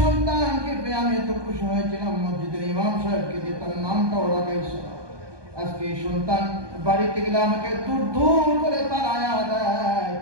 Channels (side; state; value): left; late; 1.2 ms